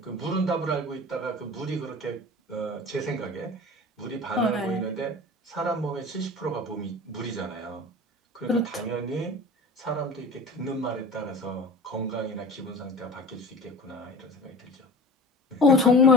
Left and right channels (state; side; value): normal; both; correlation 0.37